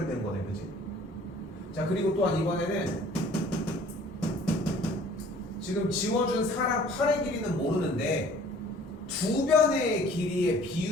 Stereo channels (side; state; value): both; normal; correlation 0.52